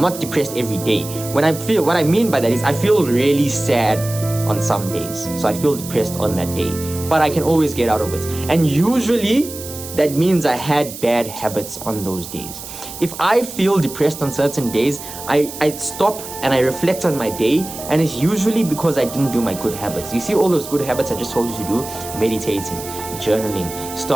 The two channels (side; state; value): right; noise; hiss, 12 dB below the sound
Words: not depressed every day. What I mean by that is I feel really sad on some days. So I feel depressed on that day. But I can always get out of it. And usually that means I had bad habits on those days. If I feel depressed on certain days, I stop and I reflect on my day, and it's usually because I didn't do my good habits. You see all those good habits I just told you to do? Meditating, journaling,